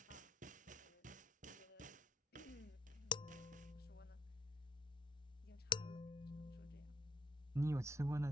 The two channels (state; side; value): normal; both; correlation 0.67